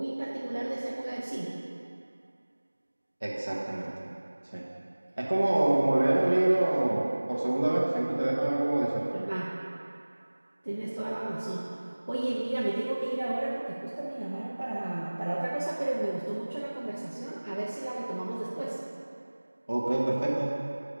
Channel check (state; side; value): inverted; both; correlation -1.00